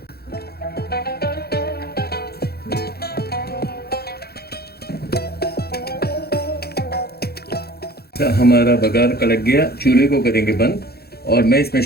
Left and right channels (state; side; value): late; right; 0.46 ms